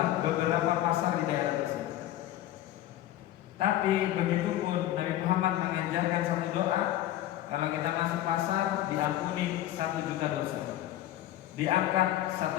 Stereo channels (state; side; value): quieter; right; 13.5 dB